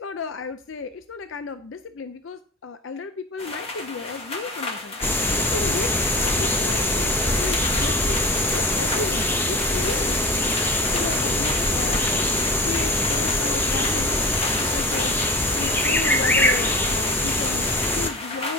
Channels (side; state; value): both; normal; correlation 0.32